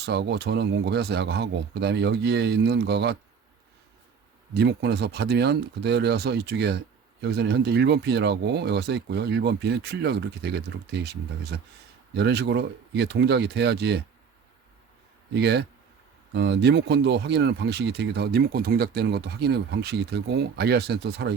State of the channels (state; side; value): quieter; left; 6.3 dB